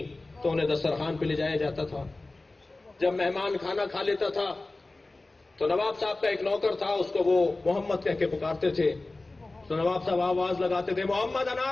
تو انہیں دسترخوان پہ لے جایا جاتا تھا۔ جب مہمان کھانا کھا لیتا تھا تو نواب صاحب کا ایک نوکر تھا، اس کو وہ محمد کہہ کے پکارتے تھے، تو نواب صاحب آواز لگاتے تھے محمد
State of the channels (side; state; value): right; quieter; 3.1 dB